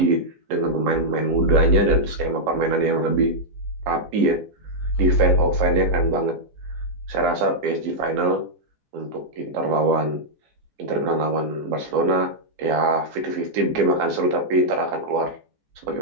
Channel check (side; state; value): left; late; 14 ms